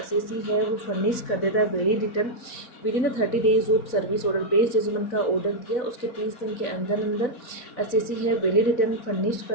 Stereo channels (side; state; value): right; late; 4.0 ms